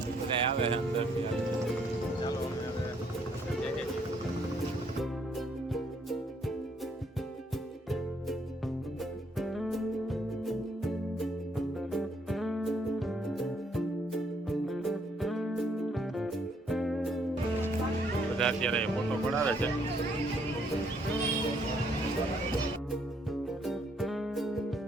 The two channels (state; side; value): normal; both; correlation 0.69